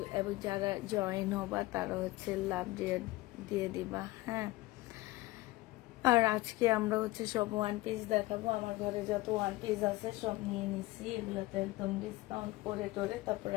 এবং যারা জয়েন হবা তারা লাভ দিয়ে দিবা। হ্যাঁ, আর আজকে আমরা সব ওয়ান পিস দেখাবো। আমার ঘরে যত ওয়ান পিস আছে সব নিয়ে নিছি, এগুলোতে একদম ডিসকাউন্ট করে টোরে তারপর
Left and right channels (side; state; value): right; quieter; 19.7 dB